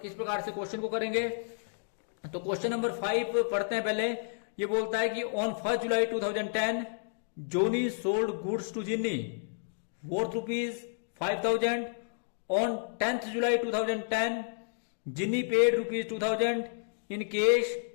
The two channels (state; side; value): silent; right; digital silence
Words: किस प्रकार से क्वेश्चन को करेंगे। तो क्वेश्चन नंबर 5 पढ़ते हैं पहले। ये बोलता है कि on 1 July 2010 Joni sold goods to Ginny worth ₹5000। On 10th July 2010 Ginny paid ₹2000 in cash